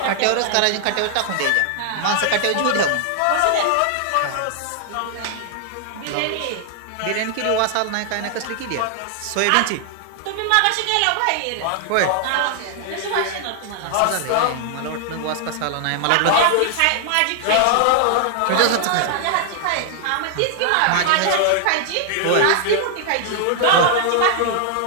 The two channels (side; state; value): both; different; correlation 0.00